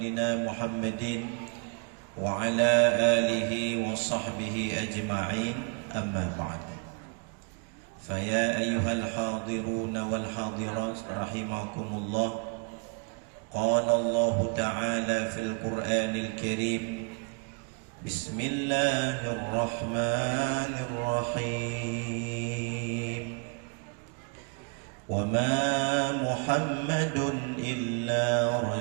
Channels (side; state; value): left; quieter; 37.0 dB